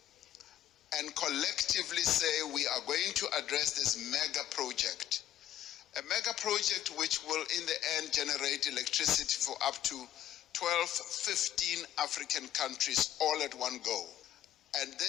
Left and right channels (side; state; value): right; quieter; 11.9 dB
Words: and collectively say we are going to address this mega project. A mega project which will in the end generate electricity for up to 12, 15 African countries all at one go. And